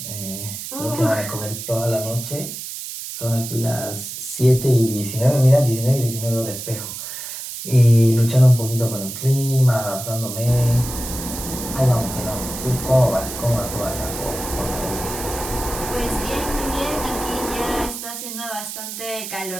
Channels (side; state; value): right; noise; hiss, 8 dB below the sound